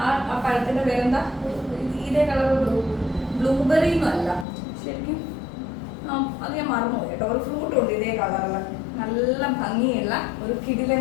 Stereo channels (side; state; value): right; drops out; at 4.5 s